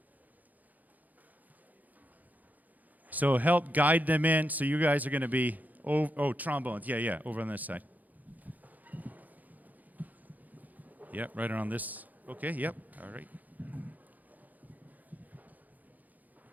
So help guide them in. So you guys are going to be, trombones. Yeah, over on this side. Yep, right around this. Okay, yep, all right.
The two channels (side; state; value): left; late; 0.081 ms